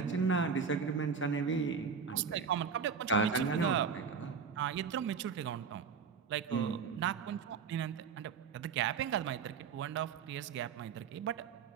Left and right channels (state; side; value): quieter; left; 6.0 dB